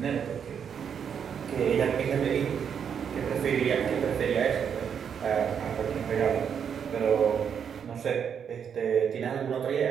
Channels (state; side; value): quieter; left; 7.6 dB